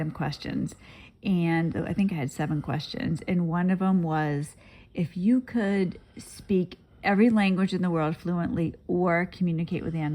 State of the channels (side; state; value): both; identical; correlation 1.00